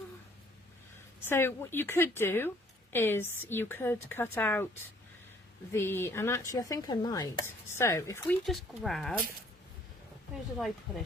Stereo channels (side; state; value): both; normal; correlation 0.60